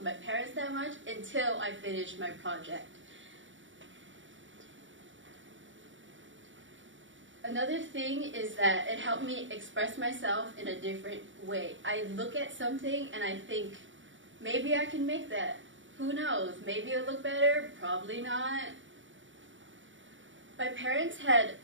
my parents that much until I finished my project. Another thing is that it helped me express myself in a different way. I look at something and I think, maybe I can make that. Who knows? Maybe it'll look better, probably not. My parents had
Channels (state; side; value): late; left; 0.56 ms